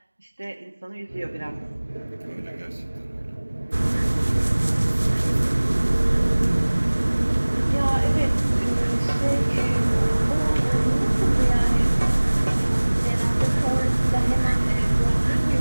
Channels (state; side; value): inverted; both; correlation -1.00